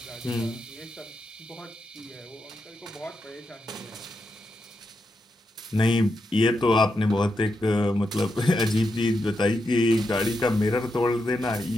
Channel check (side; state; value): both; normal; correlation 0.85